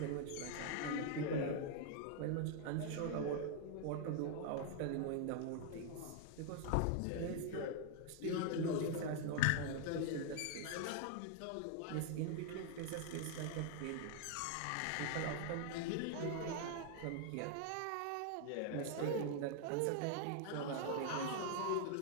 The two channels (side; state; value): both; different; correlation 0.00